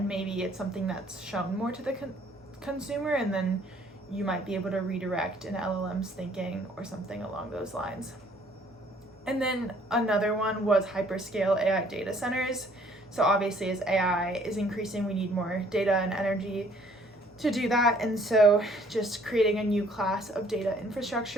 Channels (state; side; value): normal; both; correlation 0.60